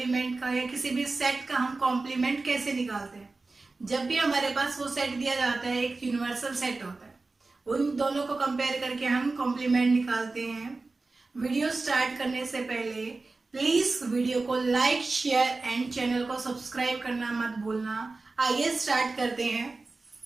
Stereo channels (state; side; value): quieter; left; 3.6 dB